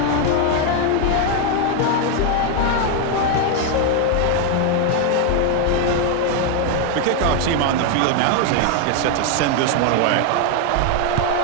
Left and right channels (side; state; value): both; different; correlation 0.01